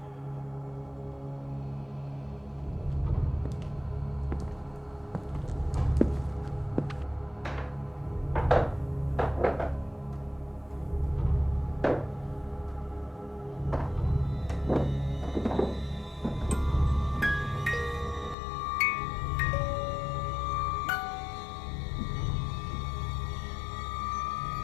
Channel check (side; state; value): right; drops out; at 18.4 s